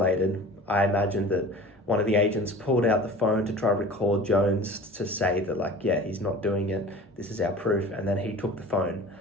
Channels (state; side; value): normal; both; correlation 0.40